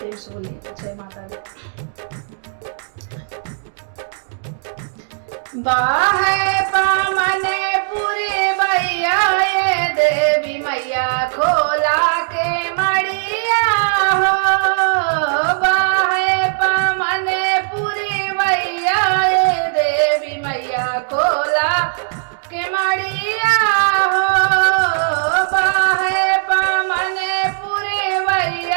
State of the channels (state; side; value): silent; left; digital silence